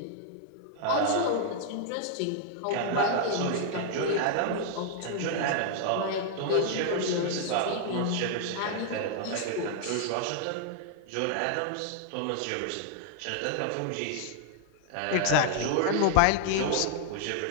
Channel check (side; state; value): both; different; correlation -0.01